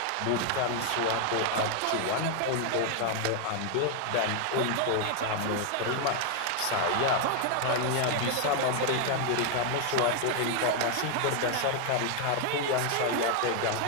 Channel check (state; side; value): different; both; correlation 0.00